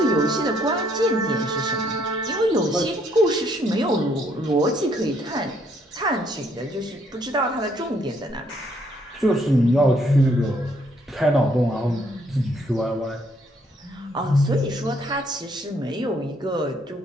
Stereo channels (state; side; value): normal; both; correlation 0.68